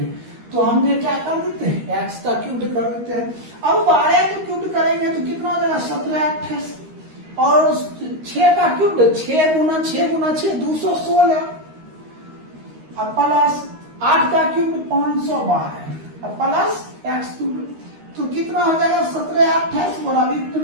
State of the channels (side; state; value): left; late; 13 ms